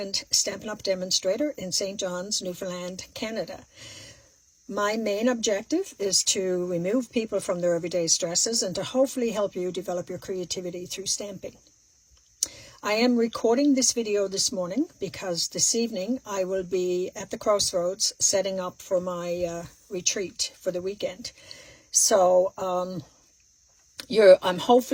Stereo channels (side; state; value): both; identical; correlation 1.00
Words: Stampin' Up! Demonstrator in St. John's, Newfoundland, Canada. My main objective is to remove people from their everyday stresses and to hopefully help you develop your creativity through stamping. I am recording this video this morning because this evening I will be at the Crossroads setting up for my retreat for the weekend. So I'm